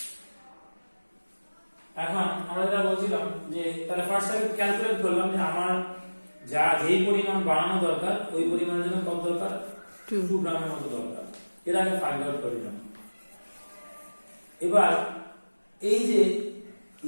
এখন আমরা যেটা বলছিলাম যে তাহলে ফার্স্ট আমি ক্যালকুলেট করলাম যে আমার যেই পরিমাণ বানানো দরকার ওই পরিমাণের জন্য কত দরকার, 2 গ্রামের মতো দরকার। এর আগে ফাইন্ড আউট করে নিলাম। এবার এই যে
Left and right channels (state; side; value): inverted; both; correlation -1.00